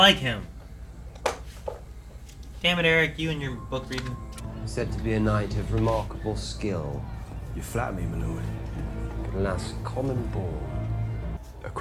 him. Damn it, Eric, you and your book reading. Said to be a knight of remarkable skill. You flatter me, my lord. Could last common ball. A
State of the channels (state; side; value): identical; both; correlation 1.00